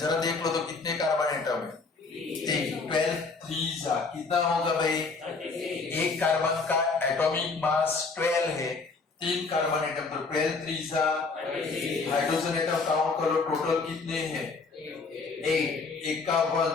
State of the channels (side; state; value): right; quieter; 4.3 dB